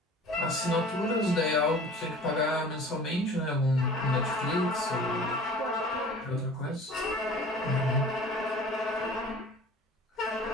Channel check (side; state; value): both; normal; correlation 0.44